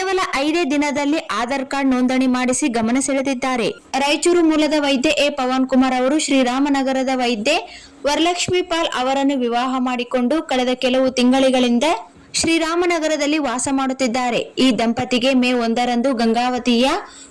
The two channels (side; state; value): both; identical; correlation 1.00